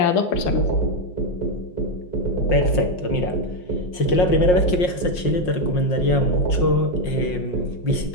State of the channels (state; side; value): late; right; 5.6 ms